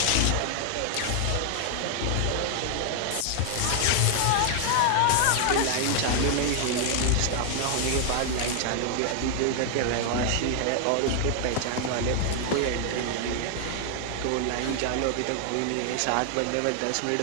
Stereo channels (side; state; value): both; different; correlation 0.00